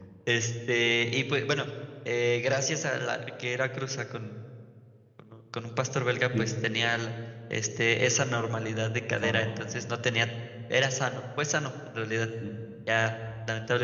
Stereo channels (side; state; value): both; identical; correlation 1.00